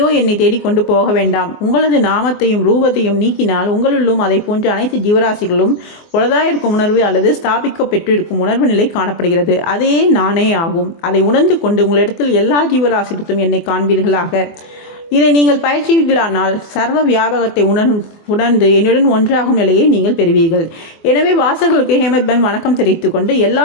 என்னை தேடிக்கொண்டு போக வேண்டாம். உங்களது நாமத்தையும் ரூபத்தையும் நீக்கினால் உங்களுள்ளும் அதை போன்ற அனைத்து ஜீவராசிகளும் உளதாயிருக்கும் உணர்வு அல்லது ஸ்தாபிக்க பெற்றிருக்கும் உணர்வு நிலை காணப்படுகிறது. அதே நானே ஆகும். அதை உணர்ந்து கொண்டு உங்களிடத்தில் எல்லா ஜீவராசிகளும் என்னை காண்பீர்களாக. இதை நீங்கள் பயிற்சிகளானால் சர்வ வியாபகத்தை உணர்ந்து என்னுடன் ஒன்றாகும் நிலையை நீங்கள் பெறுவீர்கள். எனவே வாசகர்களுக்கு ஹேமந்த் பந்த் வணக்கம் தெரிவித்துக் கொண்டு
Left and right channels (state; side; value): late; right; 24 ms